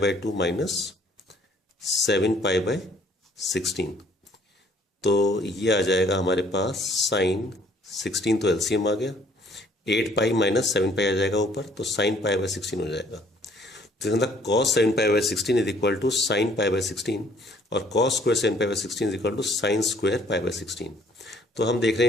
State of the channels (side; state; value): both; normal; correlation 0.61